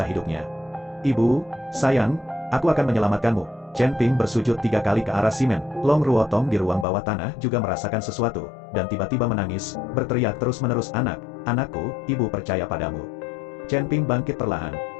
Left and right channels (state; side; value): drops out; right; at 6.9 s